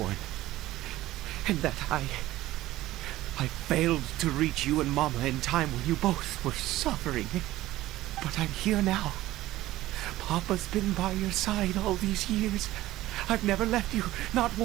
born. And that I failed to reach you and Mama in time when you both were suffering. But I'm here now. Papa's been by your side all these years. I've never left you, not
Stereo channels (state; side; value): quieter; left; 16.0 dB